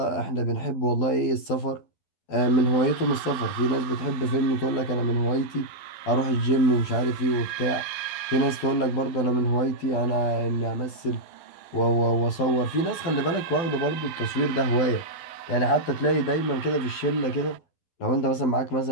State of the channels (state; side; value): late; right; 12 ms